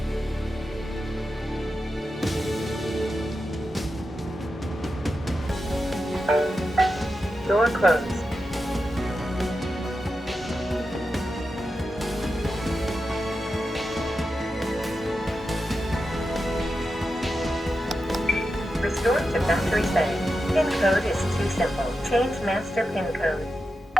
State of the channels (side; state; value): both; normal; correlation 0.89